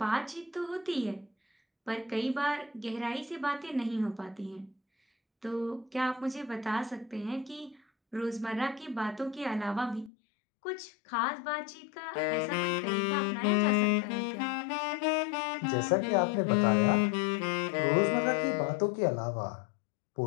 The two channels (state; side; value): drops out; right; at 10.1 s